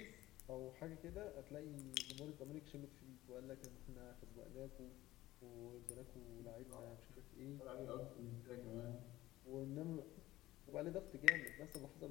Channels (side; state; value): right; quieter; 16.4 dB